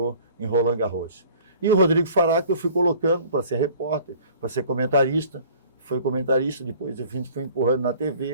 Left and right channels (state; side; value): inverted; both; correlation -0.50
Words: em Roland Garros. E o Rodrigo Faraco eu fui colocando para ser repórter, para ser comentarista. Foi comentarista, depois a gente foi empurrando na